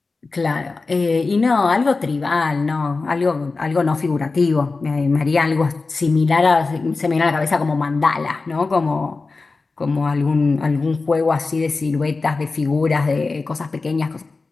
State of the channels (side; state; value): right; quieter; 3.9 dB